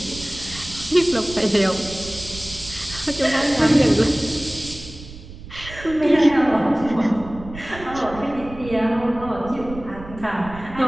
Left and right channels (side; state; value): right; noise; rumble, 15 dB below the sound